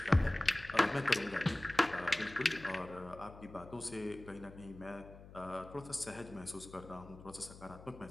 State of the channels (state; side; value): noise; left; hum, 17 dB below the sound